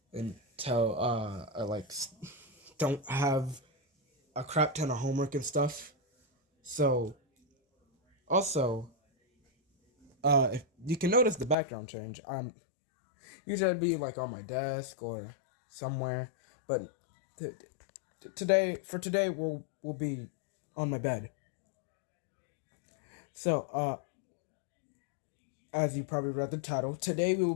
until I don't have a crap ton of homework and stuff. So, also, if you can notice the background change, usually I'd be on my desk or somewhere, but today we'll be on my bed. So, as you probably read the title, today we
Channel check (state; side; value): drops out; right; at 11.6 s